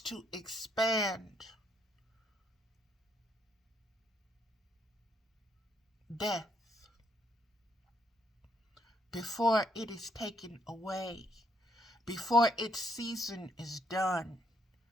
to expand death before it is taken away, before its season is done,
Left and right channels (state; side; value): normal; both; correlation 0.72